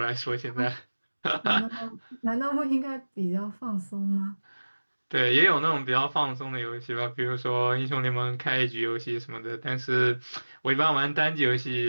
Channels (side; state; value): both; inverted; correlation -1.00